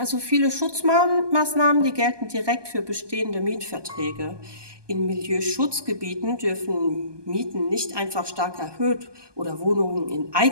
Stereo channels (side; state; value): left; late; 1.2 ms